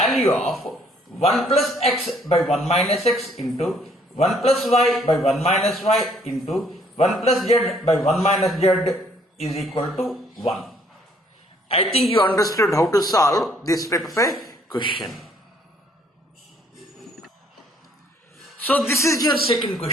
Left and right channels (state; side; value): normal; both; correlation 0.63